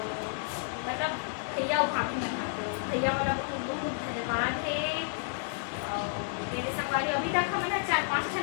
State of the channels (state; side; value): silent; right; digital silence